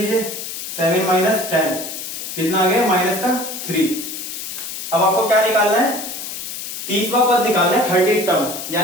7 माइनस 10 कितना आ गया? माइनस का 3। अब आपको क्या निकालना है? 30वां पद निकालना है, 30 टर्म,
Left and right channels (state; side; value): noise; left; hiss, 7 dB below the sound